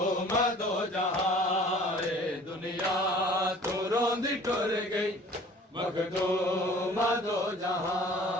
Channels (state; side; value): normal; both; correlation 0.49